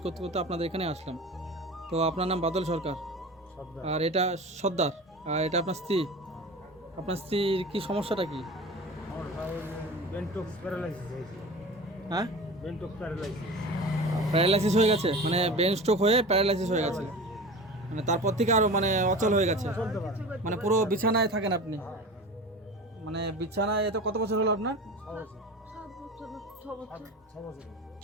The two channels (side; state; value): both; normal; correlation 0.34